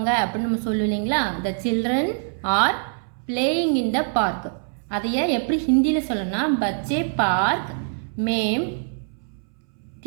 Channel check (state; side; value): silent; left; 63 dB below the other